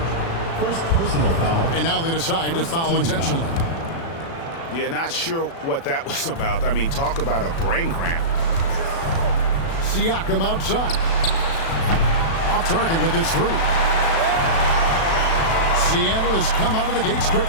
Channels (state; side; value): late; right; 36 ms